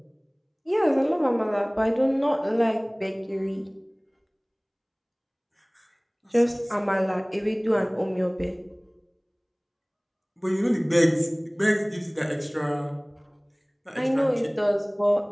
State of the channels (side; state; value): both; identical; correlation 1.00